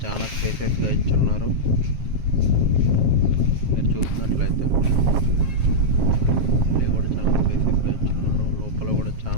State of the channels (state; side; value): late; left; 7.5 ms